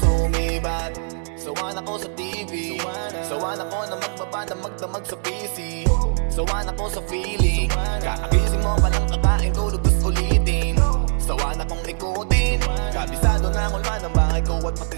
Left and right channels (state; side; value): silent; left; digital silence